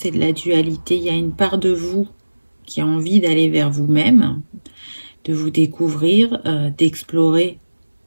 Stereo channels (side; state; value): both; inverted; correlation -1.00